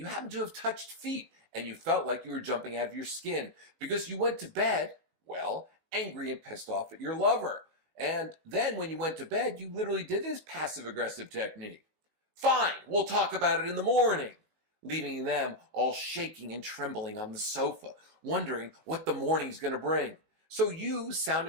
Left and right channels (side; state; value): left; late; 19 ms